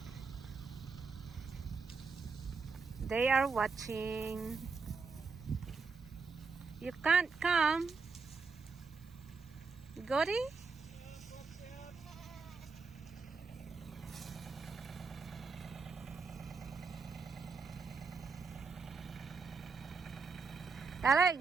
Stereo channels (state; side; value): quieter; left; 4.7 dB